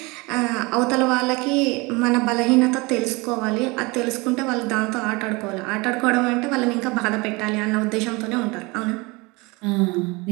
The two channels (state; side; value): quieter; left; 25.6 dB